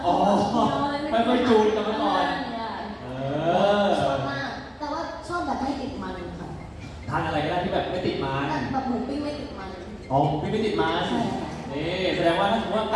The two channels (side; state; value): both; identical; correlation 1.00